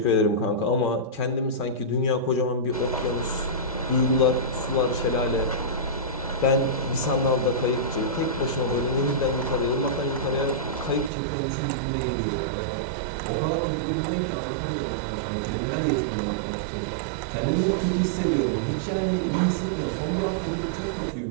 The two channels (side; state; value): left; drops out; at 11.1 s